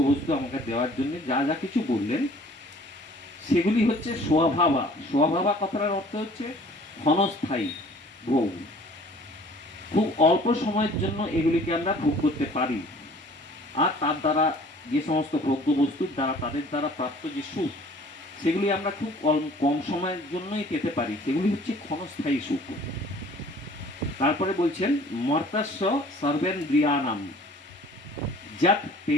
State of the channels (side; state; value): both; normal; correlation 0.52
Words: আমাকে দেওয়ার জন্য যা যা কিছু বললেন, সেগুলি হচ্ছে স্বভাবা। স্বভাবা কথাটার অর্থ হচ্ছে ক্ষণস্থায়ী ভোগ, খুব অল্প সময়ের জন্য এগুলিকে আমরা ভোগ করতে পারি। আর তার দ্বারা যে সমস্ত ভোগ্যবস্তুর দ্বারা তাদের দ্বারা প্রাপ্ত যে সুখ, সেগুলি আমরা খুব কম সময়ের জন্যই পেতে পারি, সেগুলি হচ্ছে ক্ষণস্থায়ী সুখ। তারপরে বলছেন মর্তাস্য সর্বেন্দ্রিয়ানাম যত